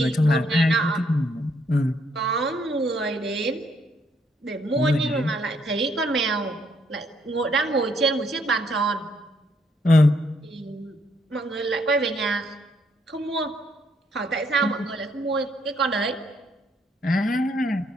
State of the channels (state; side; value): normal; both; correlation 0.71